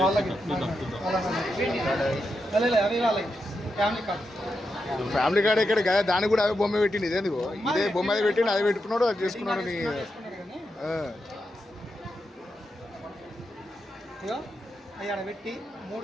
వాళ్ళకి అవి వాళ్ళకి ఫ్యామిలీ కార్డ్. ఫ్యామిలీ కార్డ్ ఎక్కడ కదా, దానికి కూడా అవే బొమ్మ పెట్టింది. ఇదేంది ఇదే బొమ్మ అది పెట్టిండు, అది పెట్టుకున్నాడు, అది చేసుకున్నాడు. నీ ఇగో అవి ఆడ పెట్టి 3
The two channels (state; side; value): normal; both; correlation 0.86